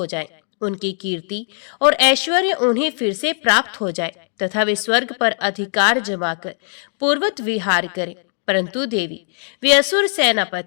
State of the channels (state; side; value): silent; right; digital silence